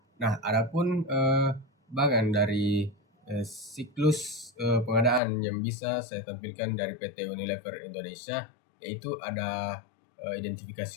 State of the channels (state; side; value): drops out; right; at 5.2 s